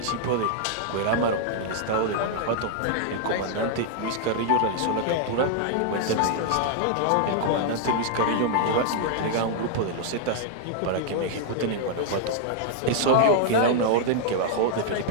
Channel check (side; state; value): both; different; correlation -0.01